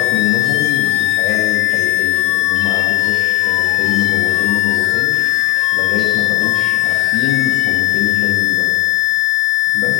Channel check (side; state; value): right; quieter; 16.4 dB